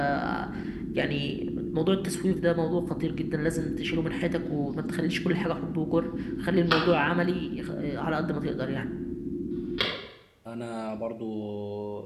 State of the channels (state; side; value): identical; both; correlation 1.00